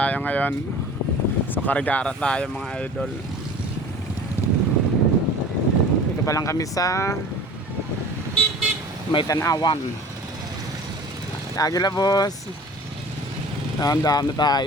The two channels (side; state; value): both; normal; correlation 0.43